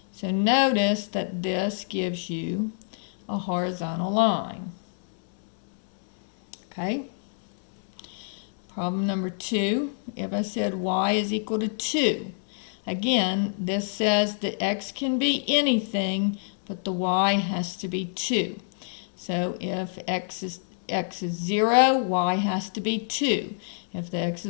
So notice that this gives you a horizontal line. Okay? Problem number 2, if I said y is equal to 2. Again, this says that x can be anything, but the y has to be 2. So if x is 0, y has to be 2. If the x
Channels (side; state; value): right; silent; digital silence